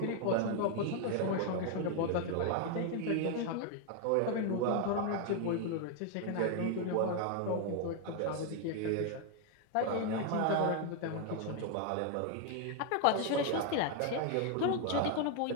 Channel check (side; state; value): both; different; correlation 0.01